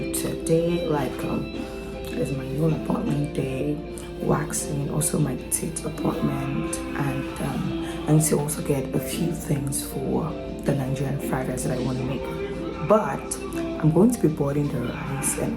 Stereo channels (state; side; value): identical; both; correlation 1.00